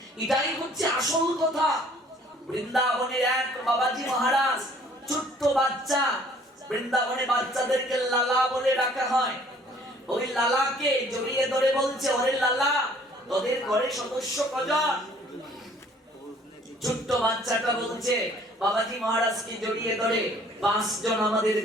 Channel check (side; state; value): both; normal; correlation 0.57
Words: এটাই হচ্ছে আসল কথা। বৃন্দাবনের এক বাবাজি মহারাজ, ছোট্ট বাচ্চা, বৃন্দাবনে বাচ্চাদেরকে লালা বলে ডাকা হয়। ওই লালাকে জড়িয়ে ধরে বলছে, ওরে লালা, তোদের ঘরের সদস্য কজন? ছোট্ট বাচ্চাটা বলছে বাবাজি মহারাজকে জড়িয়ে ধরে, 5 জন আমাদের